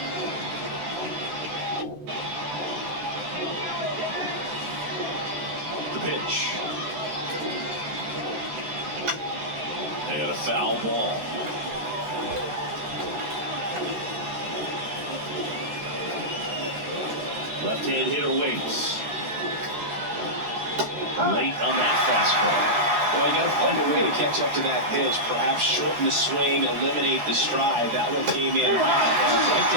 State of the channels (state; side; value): late; left; 13 ms